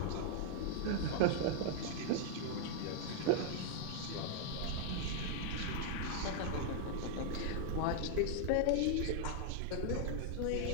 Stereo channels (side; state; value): both; different; correlation -0.01